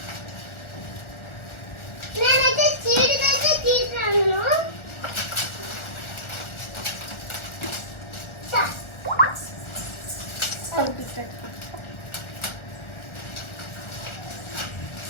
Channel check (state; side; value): late; right; 1.4 ms